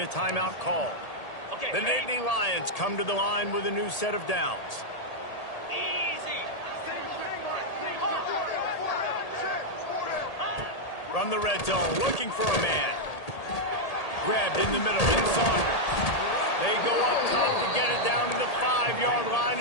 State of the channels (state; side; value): late; right; 1.8 ms